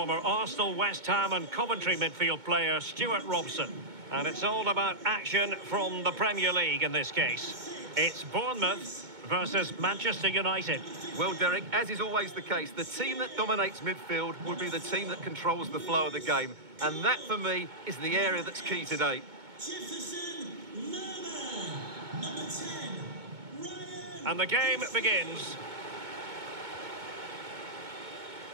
Arsenal, West Ham and Coventry midfield player Stuart Robson. And it's all about action from the Premier League in this case. It's Bournemouth versus Manchester United. Well, Derek, as is always the case, the team that dominates midfield will be the team that controls the flow of the game. And that, for me, is the area that's key today. And the game begins.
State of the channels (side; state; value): left; late; 2.2 ms